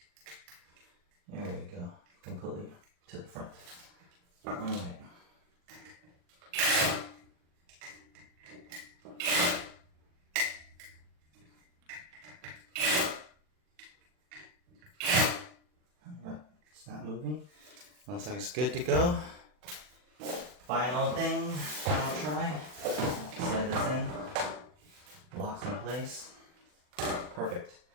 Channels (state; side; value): late; left; 40 ms